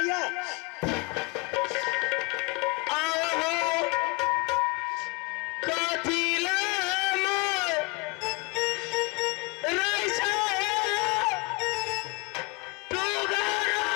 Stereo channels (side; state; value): right; quieter; 26.9 dB